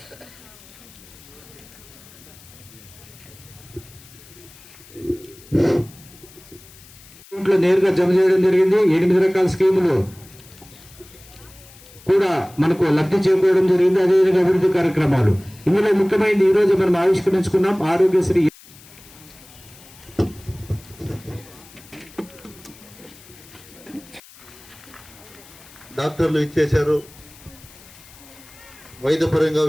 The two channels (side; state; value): left; noise; hiss, 22 dB below the sound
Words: నేరుగా జమ చేయడం జరిగింది. 8 రకాల స్కీములు కూడా మనకు లబ్ధి చేకూరడం జరిగింది. అదేవిధంగా అభివృద్ధి కార్యక్రమాలు ఇందులో ముఖ్యమైనది ఈ రోజు మనం ఆవిష్కరించుకున్నాం ఆరోగ్యశ్రీ. డాక్టర్లు ఇచ్చేశారు. వైద్యపరంగా